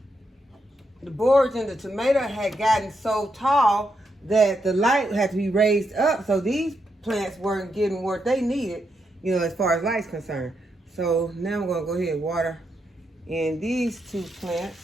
tomato had gotten so tall that the light had to be raised up. So these plants weren't getting what they needed, you know, as far as light's concerned. So now I'm gonna go ahead and water in these 2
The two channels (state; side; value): normal; both; correlation 0.82